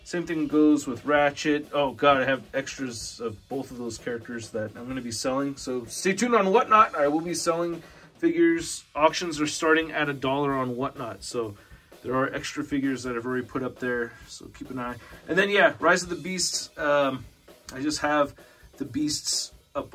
Same thing goes with Ratchet. Oh god, I have extras of both of those characters that I'm going to be selling. So stay tuned on Whatnot. I will be selling figures. Auctions are starting at $1 on Whatnot. So there are extra figures that I've already put up there. So keep an eye. And then yeah, Rise of the Beasts. I just have the Beasts up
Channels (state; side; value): identical; both; correlation 1.00